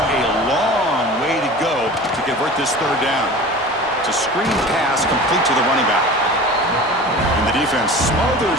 a long way to go to convert this third down. It's a screen pass complete to the running back. And the defense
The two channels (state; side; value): normal; both; correlation 0.37